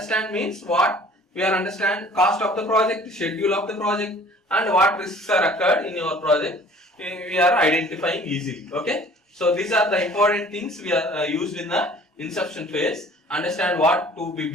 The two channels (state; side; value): normal; both; correlation 0.50